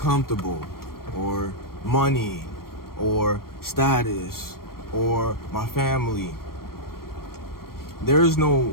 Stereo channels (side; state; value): right; late; 0.93 ms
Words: or money, or status, or my family. There is